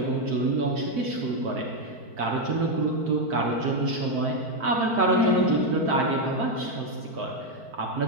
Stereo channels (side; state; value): left; late; 4.5 ms